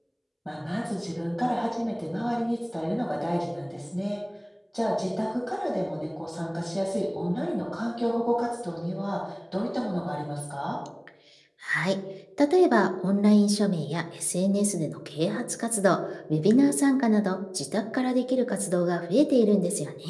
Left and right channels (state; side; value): identical; both; correlation 1.00